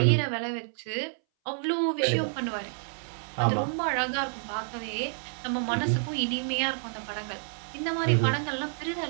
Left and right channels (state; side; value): silent; left; 59 dB below the other